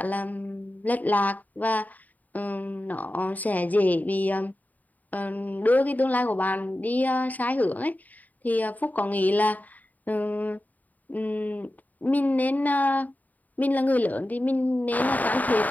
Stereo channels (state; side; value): late; right; 0.078 ms